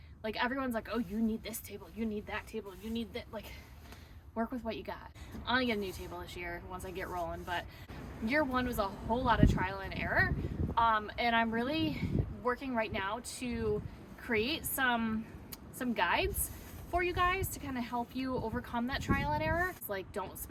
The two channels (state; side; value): identical; both; correlation 1.00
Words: Like everyone's like, oh, you need this table, you need that table, you need that, like work with what you got. I'm gonna get a new table this year once I get rolling, but year one was a whole lot of trial and error. And I'm really working right now to create some guides for you guys to kind of help you overcome that trial and error. It's like, don't